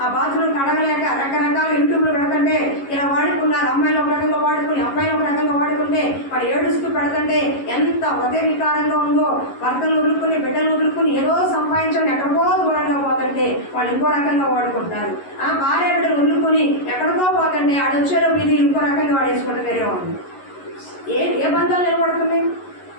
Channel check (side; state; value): right; late; 11 ms